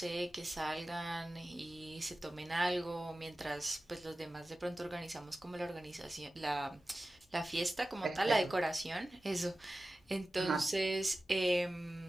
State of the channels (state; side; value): normal; both; correlation 0.95